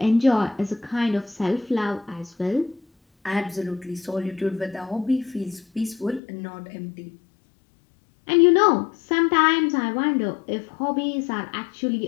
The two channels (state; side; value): drops out; right; at 6.2 s